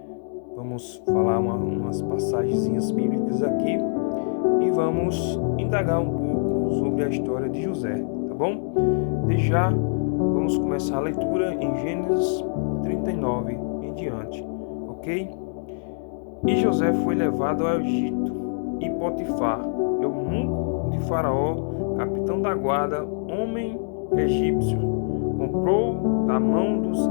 Vamos falar umas passagenzinhas bíblicas aqui e vamos indagar um pouco sobre a história de José, tá bom? Desde já, vamos começar a leitura em Gênesis 39 em diante, ok? E José foi levado ao Egito, e Potifar, eunuco de Faraó, capitão da guarda, homem egípcio, comprou da mão dos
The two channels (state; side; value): silent; right; digital silence